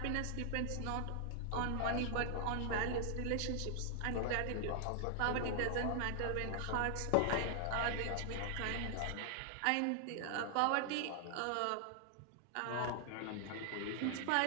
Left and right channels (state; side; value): different; both; correlation 0.00